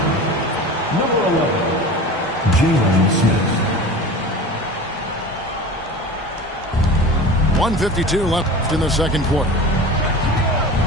Number 11, Jalen Smith. 1:52 left in the second quarter.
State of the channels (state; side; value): normal; both; correlation 0.35